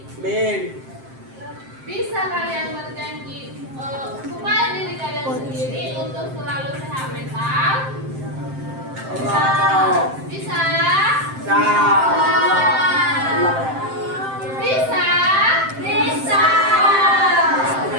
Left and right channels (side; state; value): left; late; 7.6 ms